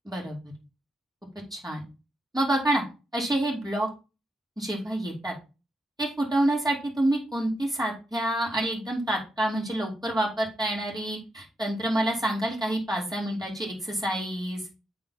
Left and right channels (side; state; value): both; normal; correlation 0.83